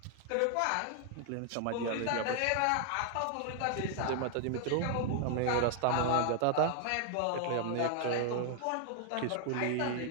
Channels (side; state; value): both; different; correlation 0.00